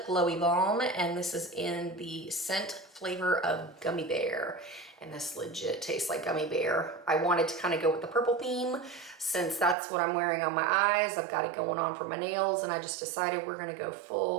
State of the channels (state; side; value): drops out; left; at 9.8 s